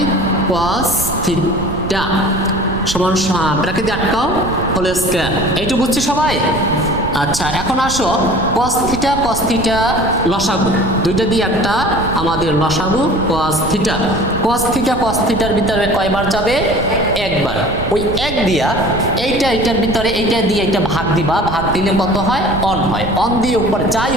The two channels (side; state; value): right; noise; rumble, 9 dB below the sound